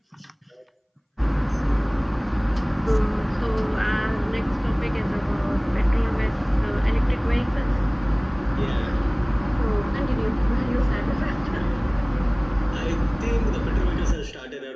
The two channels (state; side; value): identical; both; correlation 1.00